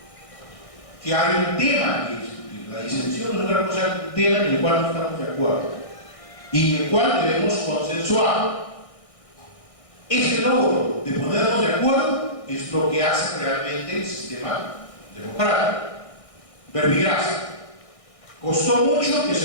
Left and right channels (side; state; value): right; late; 1.6 ms